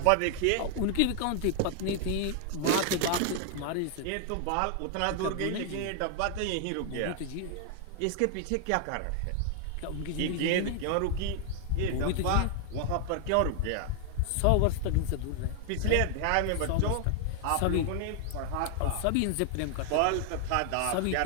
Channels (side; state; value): both; different; correlation 0.00